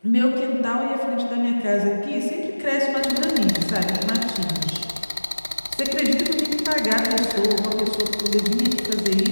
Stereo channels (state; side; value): inverted; both; correlation -1.00